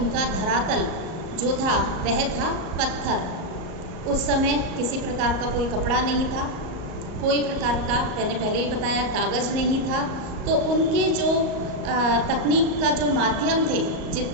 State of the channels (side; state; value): left; late; 38 ms